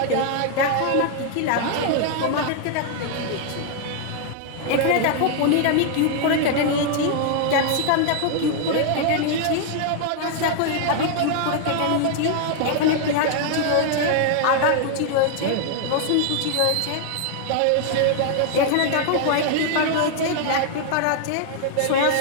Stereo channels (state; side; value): different; both; correlation 0.00